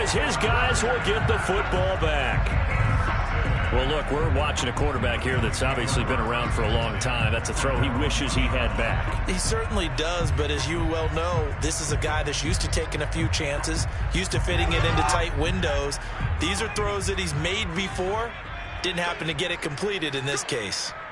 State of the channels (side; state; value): both; identical; correlation 1.00